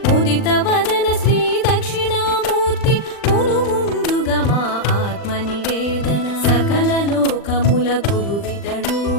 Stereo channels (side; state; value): right; late; 40 ms